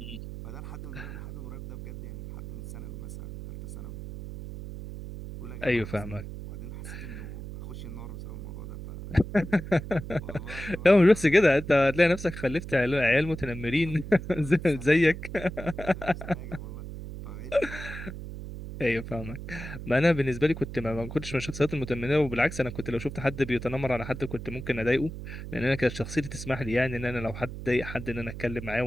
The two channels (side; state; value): right; noise; hum, 10 dB below the sound